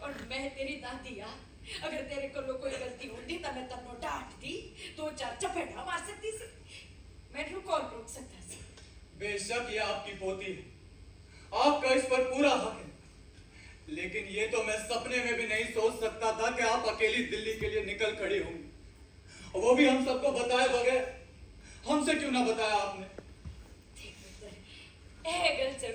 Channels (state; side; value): identical; both; correlation 1.00